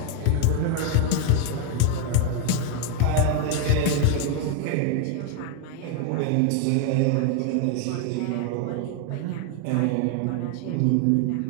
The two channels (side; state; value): both; different; correlation 0.01